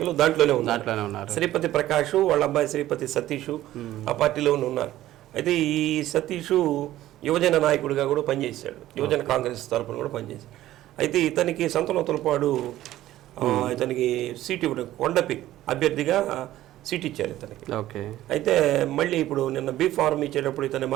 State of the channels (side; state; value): left; quieter; 14.4 dB